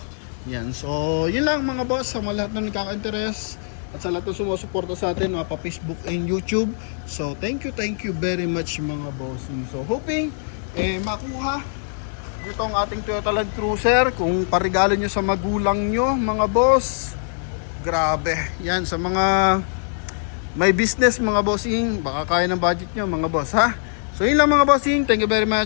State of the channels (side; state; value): right; silent; digital silence